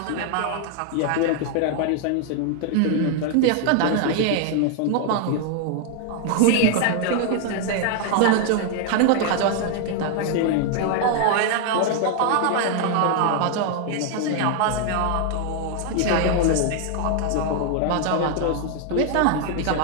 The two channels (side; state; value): both; different; correlation 0.00